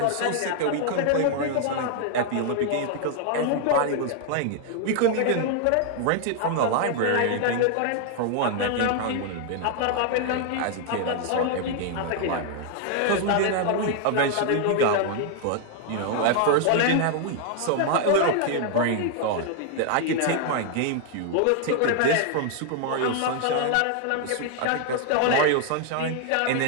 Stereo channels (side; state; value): both; different; correlation 0.00